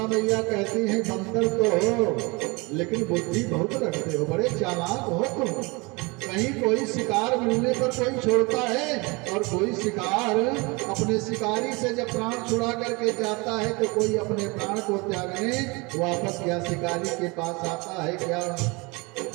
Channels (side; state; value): left; quieter; 26.9 dB